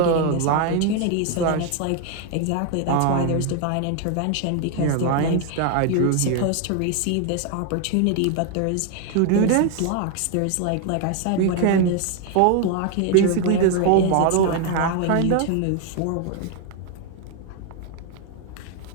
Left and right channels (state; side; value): different; both; correlation 0.00